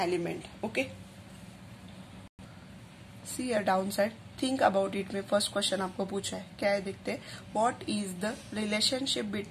element। okay, see a downside, think about it में first question आपको पूछा है, क्या है देखते हैं, what is the relationship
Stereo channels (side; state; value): both; identical; correlation 1.00